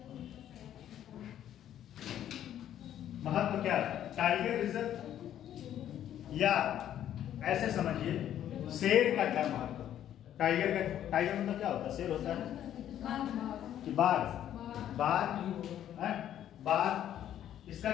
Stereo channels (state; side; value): quieter; right; 11.0 dB